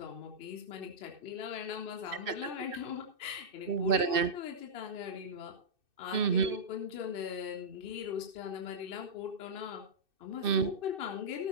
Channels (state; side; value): late; left; 2.6 ms